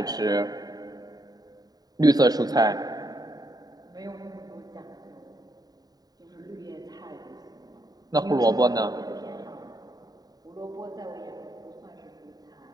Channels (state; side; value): late; left; 0.19 ms